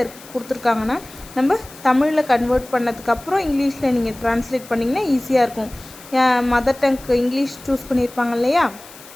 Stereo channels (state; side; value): noise; left; hiss, 20 dB below the sound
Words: கொடுத்துருக்காங்கன்னா நம்ம தமிழில் கன்வெர்ட் பண்ணதுக்கப்புறம் இங்கிலீஷில் நீங்கள் ட்ரான்ஸ்லேட் பண்ணிங்கன்னா ஈஸியாக இருக்கும். மதர் டங்க்கு இங்கிலீஷ் சூஸ் பண்ணியிருப்பாங்க இல்லையா,